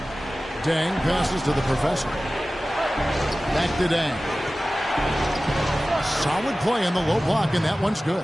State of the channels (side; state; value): both; normal; correlation 0.96